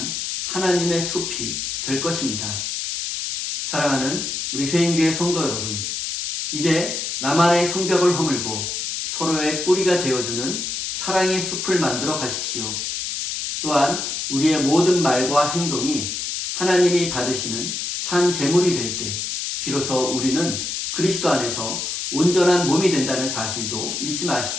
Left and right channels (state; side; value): noise; left; hiss, 3 dB below the sound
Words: 하나님의 숲이 될 것입니다. 사랑하는 우리 세임교회 성도 여러분, 이제 나만의 성벽을 허물고 서로의 뿌리가 되어주는 사랑의 숲을 만들어 가십시오. 또한 우리의 모든 말과 행동이 하나님이 받으시는 산 제물이 될 때 비로소 우리는 그리스도 안에서 온전한 몸이 된다는 사실도 잊지